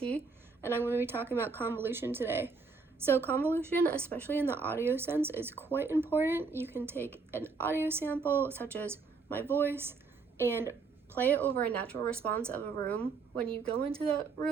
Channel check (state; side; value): quieter; left; 4.6 dB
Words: and I'm going to be talking about convolution today. So convolution, especially in the audio sense, is quite important. You can take an audio sample, such as my voice, and play it over a natural response of a room. When you go into the